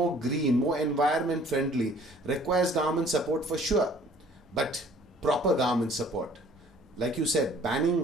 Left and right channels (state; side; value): normal; both; correlation 0.54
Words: green, more environment friendly, requires government support for sure, but proper government support. Like you said,